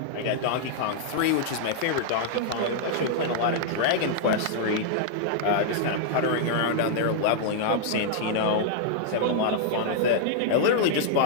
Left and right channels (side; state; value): both; different; correlation -0.01